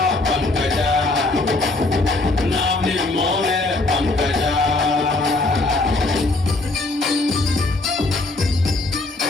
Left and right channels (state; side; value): quieter; right; 3.0 dB